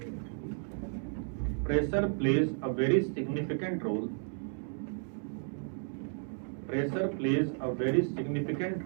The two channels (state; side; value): silent; left; 56 dB below the other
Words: plays a very significant role, pressure plays a very significant